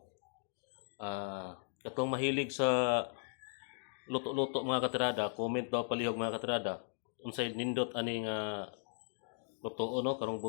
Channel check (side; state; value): right; silent; digital silence